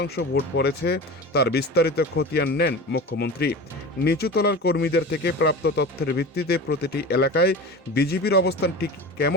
ভোট পড়েছে তার বিস্তারিত খতিয়ান নেন মুখ্যমন্ত্রী। নিচুতলার কর্মীদের থেকে প্রাপ্ত তথ্যের ভিত্তিতে প্রতিটি এলাকায় বিজেপির অবস্থান ঠিক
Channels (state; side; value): normal; both; correlation 0.31